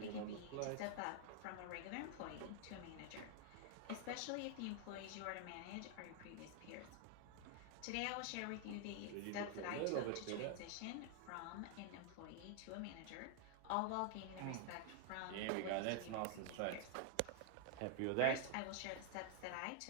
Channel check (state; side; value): different; both; correlation 0.00